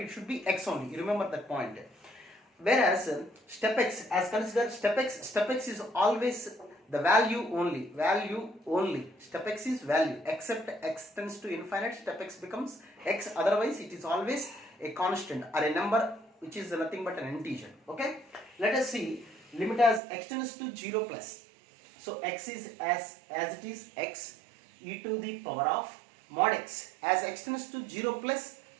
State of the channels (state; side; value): drops out; left; at 20.0 s